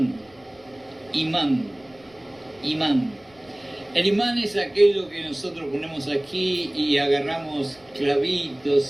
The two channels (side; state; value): left; noise; rumble, 30 dB below the sound